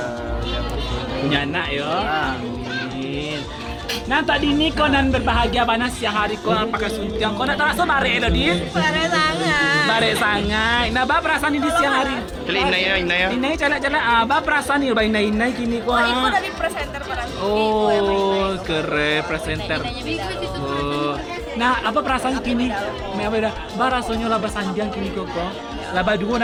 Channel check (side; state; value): both; identical; correlation 1.00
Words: yang Punya anak ya. Amin. Nah tadi ini kau nan berbahagia panas siang hari kau pakai suntiang kau nak terasa bare lo di? Pada sangat. Bare sangai. Nah bah perasaan ini di siang hari. Kali inai ya. Inai calak-calak bah perasaan ini bah inai kini kau. Oh, itu dari presenter para Oh keren presenter. Oh. Nah apa perasaan kini? Me apa dah? Bah rasanya lah sanjang kini kau. Lah dua